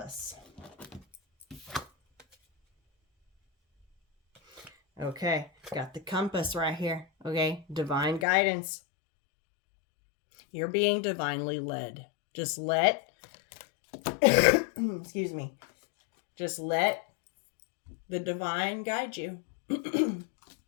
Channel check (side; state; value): right; drops out; at 8.2 s